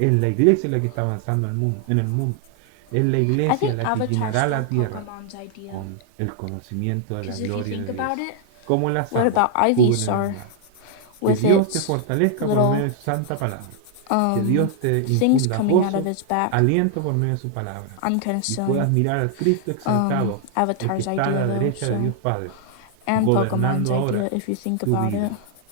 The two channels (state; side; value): different; both; correlation 0.00